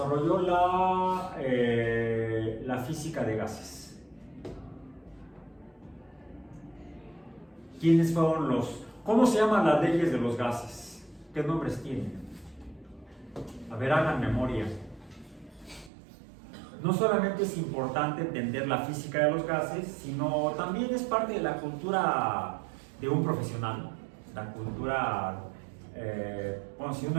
la física de gases? ¿Quiénes fueron los? ¿Cómo se llaman las leyes de los gases? ¿Qué nombres tienen? A ver, hagan memoria. No solamente es importante entender la física de los gases, sino también es parte de la cultura de un profesional. La cultura, bueno, si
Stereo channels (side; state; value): left; drops out; at 15.9 s